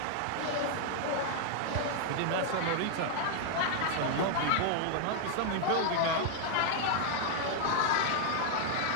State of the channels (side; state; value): both; different; correlation -0.01